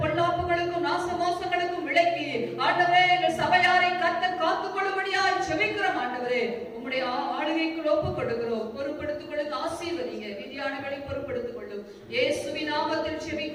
பொல்லாப்புகளுக்கும் நாசமோசங்களுக்கும் விலக்கி ஆண்டவரே எங்கள் சபையாரை கர்த்தர் காத்துக் கொள்ளும்படியாய் ஜெபிக்கிறோம் ஆண்டவரே. உம்முடைய ஆளுகைக்குள் ஒப்புக் கொடுக்கிறோம். பொறுப்படுத்திக் கொள்ளுங்க, ஆசீர்வதிங்க. விதியானங்களை பொறுப்படுத்திக் கொள்ளும். இயேசுவின் நாமத்தில்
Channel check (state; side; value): identical; both; correlation 1.00